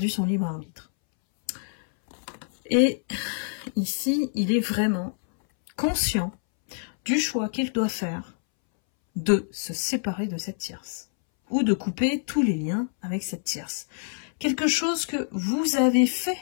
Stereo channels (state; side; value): silent; right; 61 dB below the other